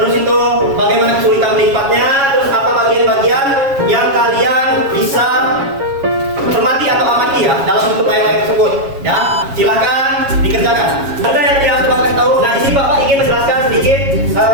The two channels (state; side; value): late; left; 7.3 ms